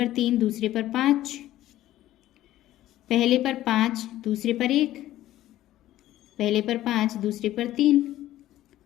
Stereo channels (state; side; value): quieter; right; 14.2 dB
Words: 3, दूसरे पर 5, पहले पर 5, दूसरे पर 1, पहले पर 5, दूसरे पर 3,